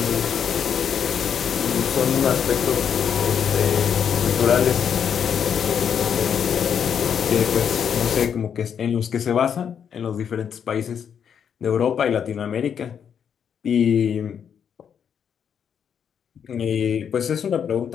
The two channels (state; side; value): quieter; right; 7.8 dB